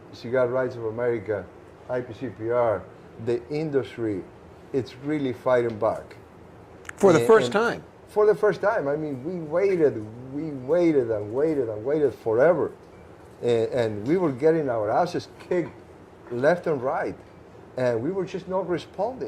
Cigar Rights of America, IPCPR, the industry. It's really fighting back. For the first time. For the first time. I mean, we waited forever. And we were getting our asses kicked left and right. And we were just not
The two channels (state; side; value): identical; both; correlation 1.00